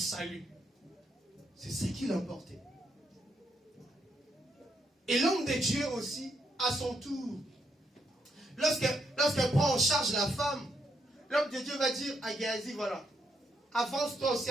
C'est ce qui l'emportait. Et l'homme de Dieu aussi, à son tour, lorsqu'elle prend en charge la femme, l'homme de Dieu va dire à Géasi, voilà, avance-toi aussi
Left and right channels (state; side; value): normal; both; correlation 0.77